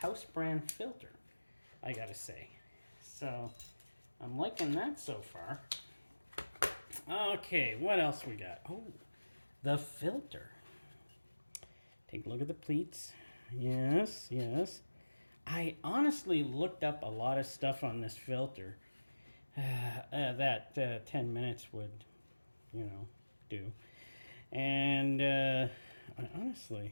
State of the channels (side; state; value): both; inverted; correlation -1.00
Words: brand filter, I gotta say. So I'm liking that so far. Okay, what else we got? Oh, the filter. Take a look at the pleats. Yes, yes. I honestly looked up a lot of stuff on this filter that 10 minutes would, do. And I